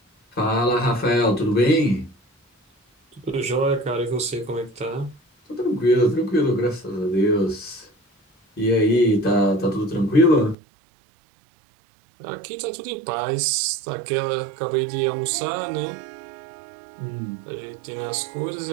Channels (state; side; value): drops out; left; at 10.6 s